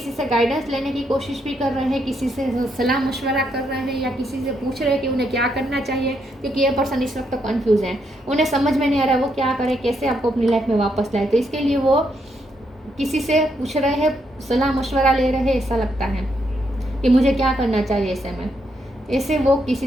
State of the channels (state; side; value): normal; both; correlation 0.77